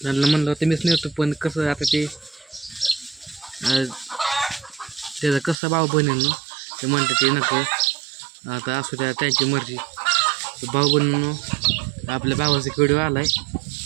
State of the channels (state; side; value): drops out; left; at 5.6 s